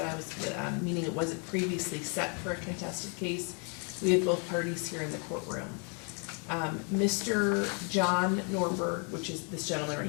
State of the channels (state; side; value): quieter; right; 37.5 dB